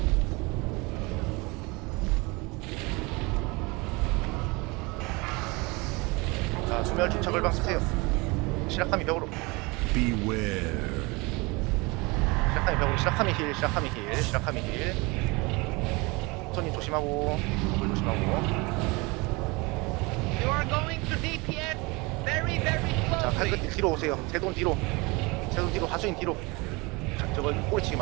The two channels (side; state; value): left; quieter; 25.9 dB